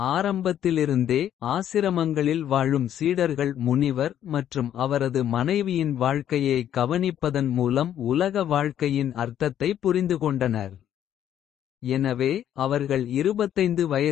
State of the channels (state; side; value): quieter; right; 10.6 dB